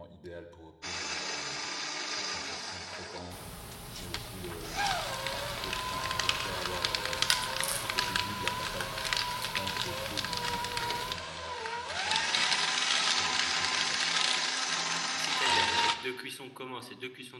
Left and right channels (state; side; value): identical; both; correlation 1.00